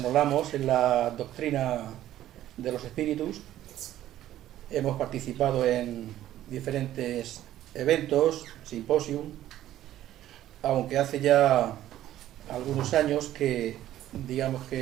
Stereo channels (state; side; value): quieter; left; 13.0 dB